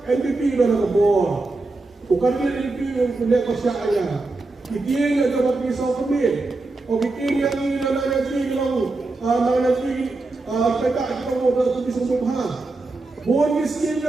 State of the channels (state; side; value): quieter; left; 3.3 dB